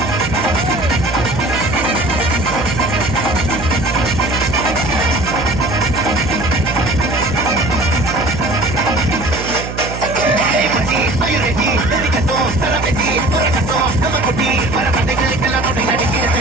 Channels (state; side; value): noise; right; hum, 8 dB below the sound